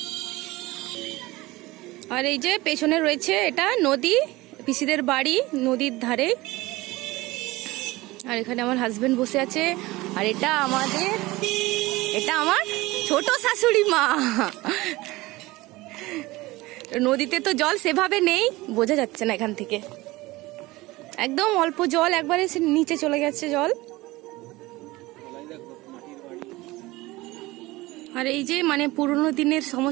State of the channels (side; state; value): left; quieter; 20.2 dB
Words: আর এই যে পেছনে রয়েছে এটা নদী, পিসিদের বাড়ি নদীর ধারে। আর এখানে আমার হাজবেন্ড বসে আছে। আর এটা আমার ছোট শাশুড়ি মা। নদীতে তো জল সেভাবে নেই, বোঝা যাচ্ছে না এখান থেকে, একদম অল্প জল, একবারে নিচে চলে গেছে জল। আর এই যে মানে পুরোনো দিনের